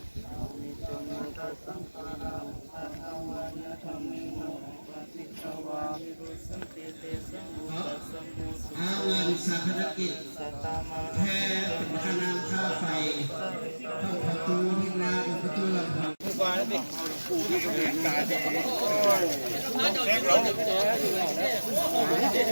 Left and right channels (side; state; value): both; inverted; correlation -1.00